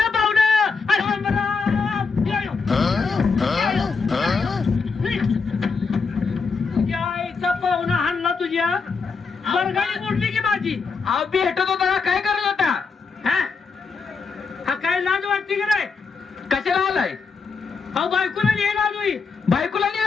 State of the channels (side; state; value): right; quieter; 4.9 dB